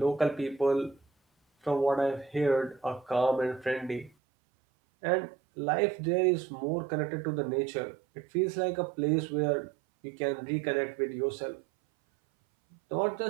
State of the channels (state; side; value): drops out; left; at 4.1 s